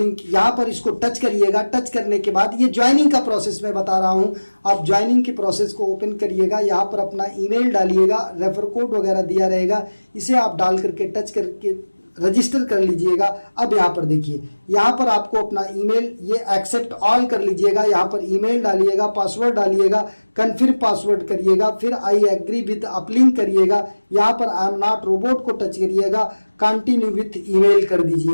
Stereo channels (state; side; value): inverted; both; correlation -1.00